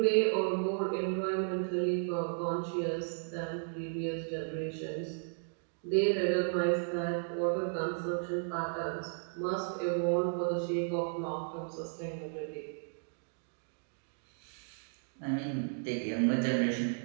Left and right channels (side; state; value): left; silent; digital silence